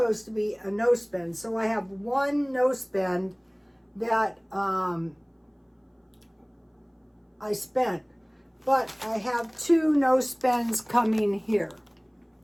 to be a no spend. So I have 1 no spend that I spent. But I have 2 no spends coming here.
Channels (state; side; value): identical; both; correlation 1.00